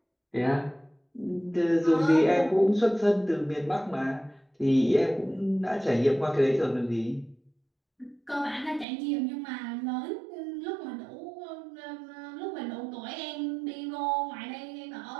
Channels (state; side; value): drops out; left; at 8.8 s